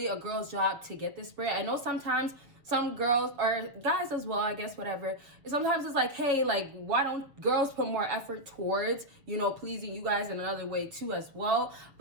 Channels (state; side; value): late; left; 6.8 ms